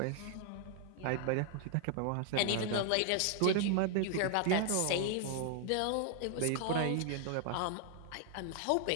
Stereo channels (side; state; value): both; different; correlation 0.00